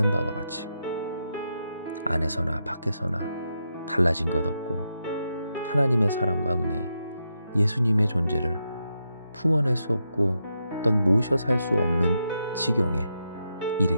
바와 같이 안에서나 밖에서나 달라진 것 없고 하나님의 사랑과 은혜, 예수님의 존재를 품어낼 수 없고 어떤 모셔 살 수 없는 지경에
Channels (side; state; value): both; inverted; correlation -0.84